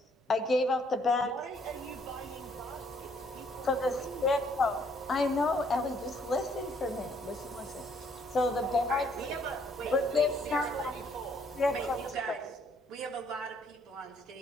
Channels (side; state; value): both; normal; correlation 0.66